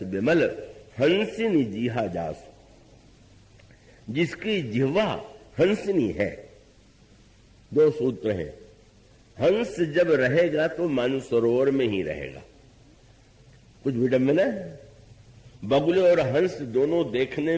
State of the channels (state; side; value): identical; both; correlation 1.00